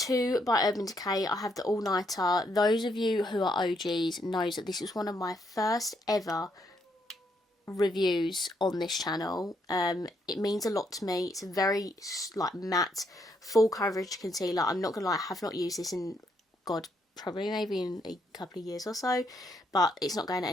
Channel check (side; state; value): both; normal; correlation 0.74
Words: by Urban Decay. I have the All Nighter. Those of you who are OGs knows that this was one of my first ever reviews on this channel. It means a lot to me. It's a very like matte full coverage concealer. I'm not gonna lie, I have not used this in god probably maybe in a couple of years or so, but it's not going